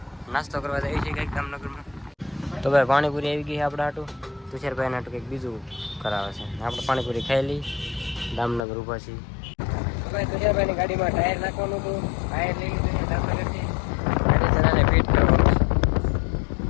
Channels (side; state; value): right; drops out; at 8.6 s